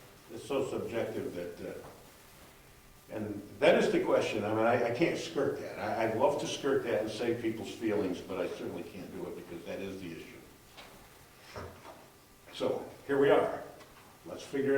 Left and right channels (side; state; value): both; identical; correlation 1.00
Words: it's so subjective that, and that is the question. I mean, I can't skirt that. I'd love to skirt that and save people's feelings, but I certainly can't do it because that is the issue. So, here we are. Let's figure